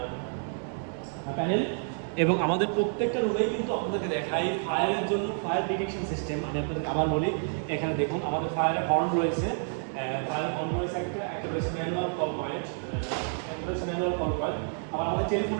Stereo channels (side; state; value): left; silent; 58 dB below the other